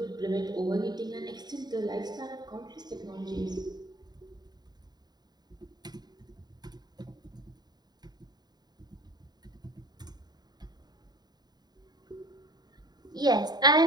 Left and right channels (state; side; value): late; left; 0.20 ms